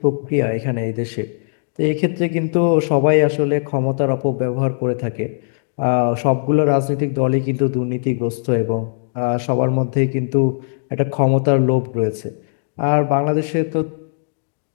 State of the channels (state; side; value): silent; right; digital silence